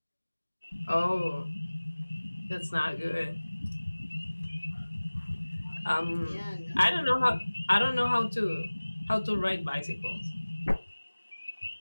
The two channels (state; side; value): inverted; both; correlation -1.00